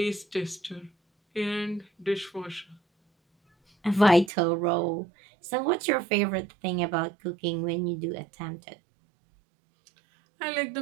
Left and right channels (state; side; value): drops out; left; at 4.3 s